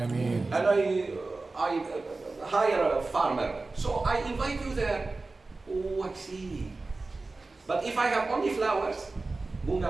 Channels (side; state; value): left; quieter; 3.5 dB